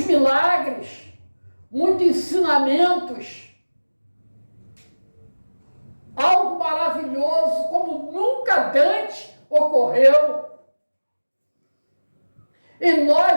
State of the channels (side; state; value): both; inverted; correlation -1.00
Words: muitos ensinamentos, algo maravilhoso como nunca antes ocorreu. E